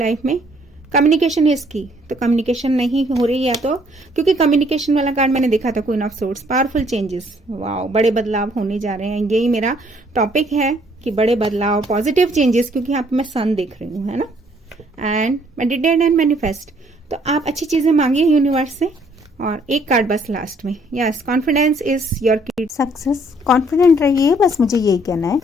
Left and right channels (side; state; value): both; normal; correlation 0.64